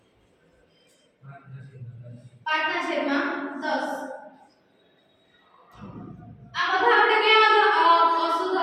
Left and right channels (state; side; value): identical; both; correlation 1.00